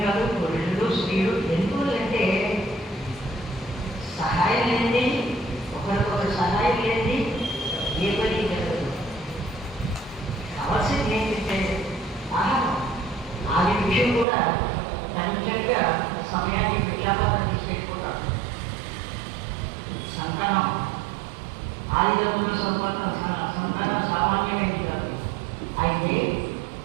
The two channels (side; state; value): left; drops out; at 14.2 s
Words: కాదు, పురుషులు స్త్రీలు ఎందుకంటే సహాయం లేనిది, ఒకరికొకరు సహాయం లేనిది ఏ పని జరగదు. కావాల్సింది ఏంటంటే ఆహారం. ఆది విషయం కూడా తనిఖీగా సమయాన్ని విజ్ఞాపన తీసుకెళ్ళిపోతాం. సంతానం ఆదిదంతుల సంతానం సామాన్యమైనది కాదు. అయితే